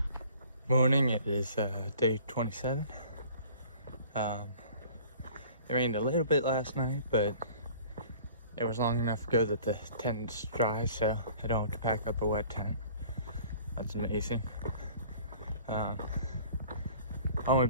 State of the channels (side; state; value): both; inverted; correlation -0.49